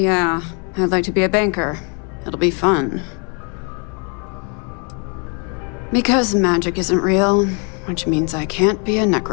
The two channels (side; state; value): right; quieter; 36.4 dB